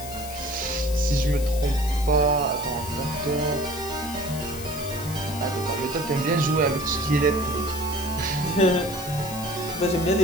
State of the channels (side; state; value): left; noise; hiss, 12 dB below the sound